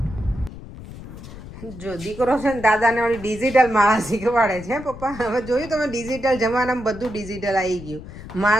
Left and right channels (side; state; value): left; noise; rumble, 14 dB below the sound